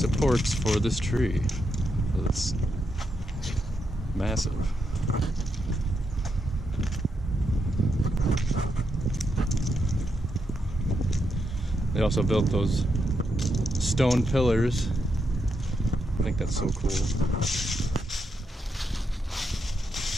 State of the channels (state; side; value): normal; both; correlation 0.82